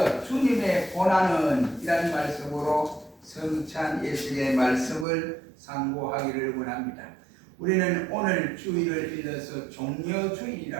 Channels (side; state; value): left; drops out; at 5.1 s